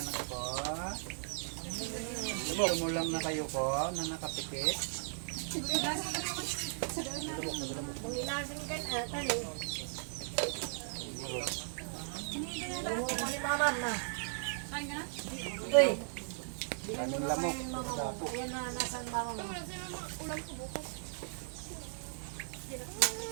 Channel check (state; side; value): silent; left; 53 dB below the other